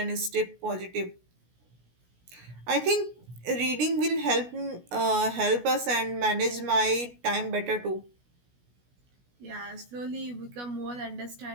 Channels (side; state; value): left; late; 16 ms